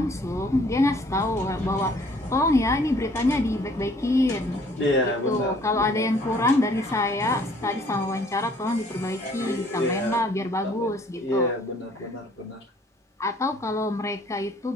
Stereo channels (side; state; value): both; normal; correlation 0.58